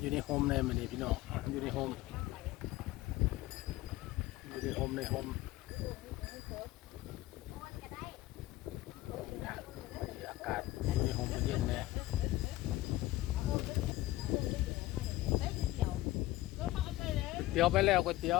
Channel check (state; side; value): quieter; right; 16.9 dB